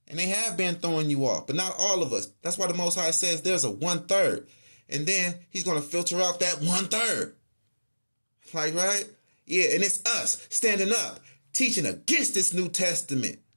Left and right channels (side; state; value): both; inverted; correlation -1.00